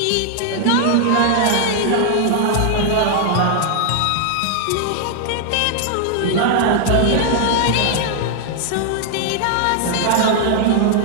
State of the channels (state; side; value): different; both; correlation 0.00